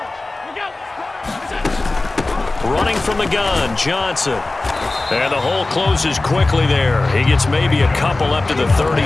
Running from the gun, Johnson. And the hole closes quickly there. He gets maybe a couple up to the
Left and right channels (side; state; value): right; quieter; 3.1 dB